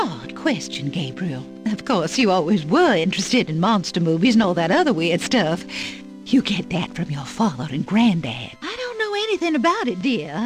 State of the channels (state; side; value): identical; both; correlation 1.00